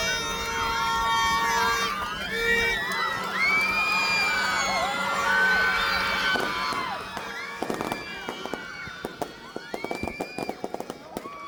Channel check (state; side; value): identical; both; correlation 1.00